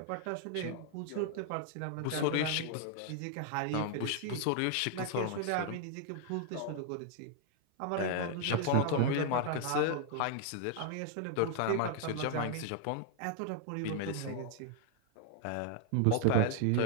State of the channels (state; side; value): different; both; correlation 0.00